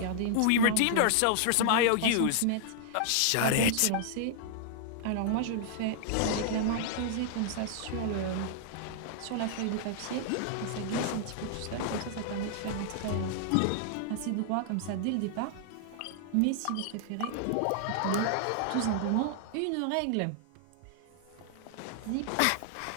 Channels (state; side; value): different; both; correlation -0.01